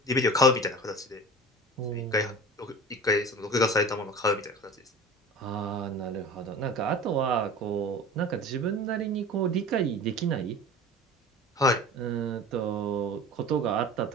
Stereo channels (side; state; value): both; normal; correlation 0.37